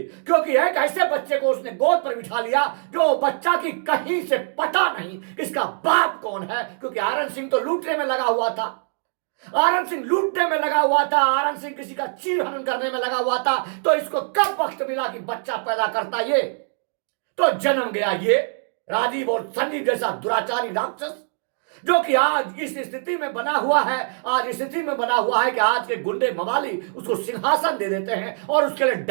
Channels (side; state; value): left; silent; 59 dB below the other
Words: क्योंकि एक ऐसे बच्चे को उसने गोद पर बिठा लिया जो बच्चा की कहीं से पता नहीं इसका बाप कौन है, क्योंकि आरन सिंह तो लूटने में लगा हुआ था, आरन सिंह लूटने में लगा हुआ था, आरन सिंह किसी का चीरहरण करने में लगा हुआ था। तो इसको कब वक्त मिला कि बच्चा पैदा करता? ये तो जन्म गया ये राजीव और संजीव जैसा दुराचारी राक्षस, जो कि आज इस स्थिति में बना हुआ है। आज इस स्थिति में बना हुआ है कि आज के गुंडे मवाली उसको सिंहासन दे देते हैं और उसके लिए